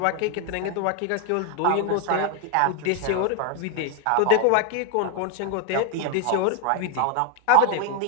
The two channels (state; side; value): different; both; correlation 0.01